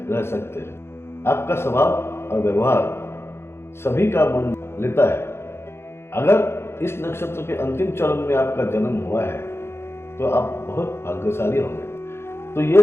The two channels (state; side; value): late; right; 0.12 ms